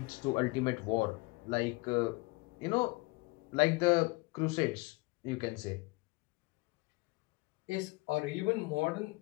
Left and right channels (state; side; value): quieter; right; 25.5 dB